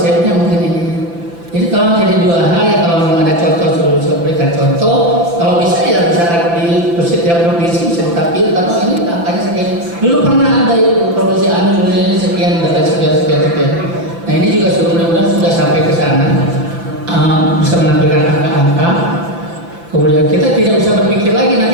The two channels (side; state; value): left; late; 5.9 ms